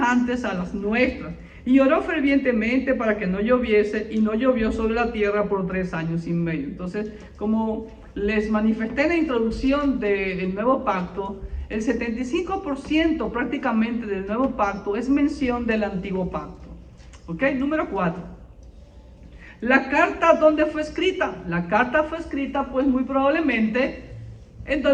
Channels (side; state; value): both; identical; correlation 1.00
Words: a las nuestras. Y oró fervientemente para que no lloviese, y no llovió sobre la tierra por 3 años y medio. Entonces, como les manifesté en la introducción del nuevo pacto, el 75% prácticamente del nuevo pacto es mención del antiguo pacto. ¿Ok? Número 4. La carta, ¿dónde fue escrita? La carta fue escrita, pues muy probablemente, en